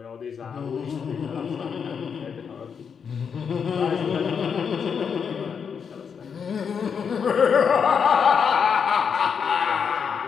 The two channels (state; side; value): quieter; right; 6.7 dB